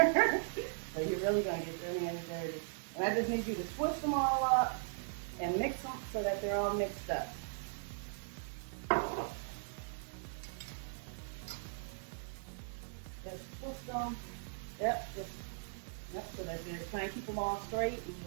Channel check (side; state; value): left; silent; 52 dB below the other